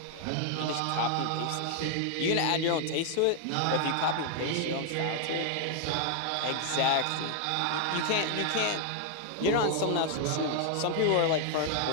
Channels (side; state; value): both; different; correlation 0.00